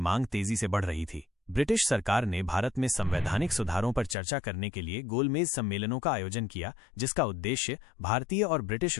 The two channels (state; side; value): drops out; right; at 4.2 s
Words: तेजी से बढ़ रही थी। ब्रिटिश सरकार ने भारत में संवैधानिक सुधारों पर चर्चा करने के लिए गोलमेज सम्मेलनों का आयोजन किया, जिसका उद्देश्य भारतीय और ब्रिटिश